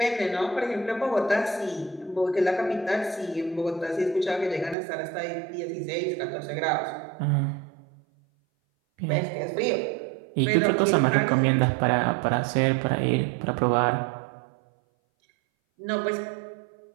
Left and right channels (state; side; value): drops out; left; at 4.8 s